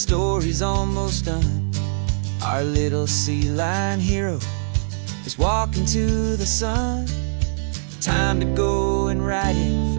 almost done. Our little sea lion hero is walking to the sun. Time to go and write it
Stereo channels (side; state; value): left; silent; digital silence